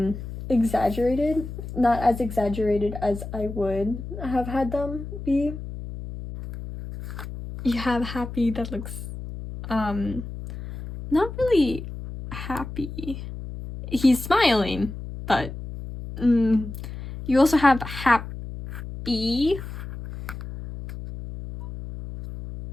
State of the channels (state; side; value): noise; left; hum, 9 dB below the sound